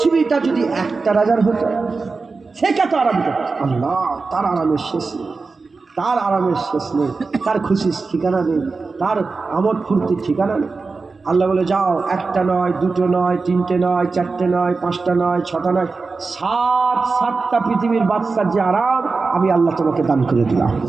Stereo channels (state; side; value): quieter; left; 4.2 dB